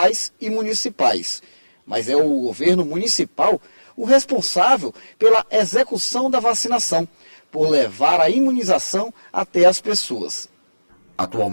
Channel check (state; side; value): inverted; both; correlation -1.00